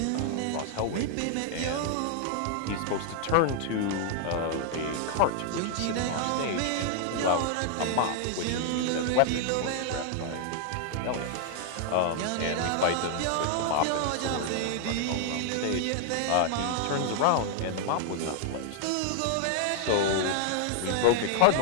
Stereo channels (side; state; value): both; different; correlation 0.00